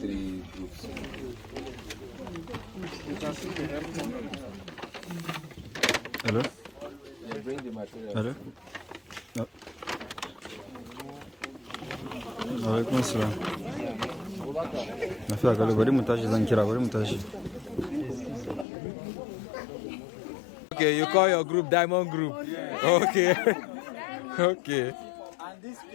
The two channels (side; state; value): right; drops out; at 18.7 s